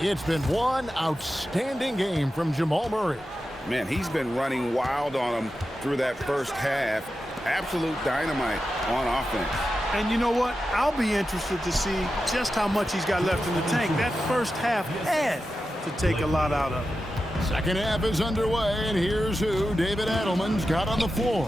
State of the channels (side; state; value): both; normal; correlation 0.91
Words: been one outstanding game from Jamal Murray. Man, he's been running wild on him through that first half. Absolute dynamite on offense. And you know what? I'll be interested to see just how much he's got left in the tank. That first half had to take a lot out of him. Second half is underway, and here's who David Adelman's got on the floor.